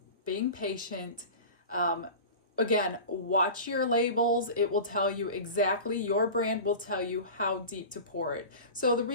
being patient. Again, watch your labels. It will tell you exactly, your brand will tell you how deep to pour it. So the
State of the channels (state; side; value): inverted; both; correlation -0.33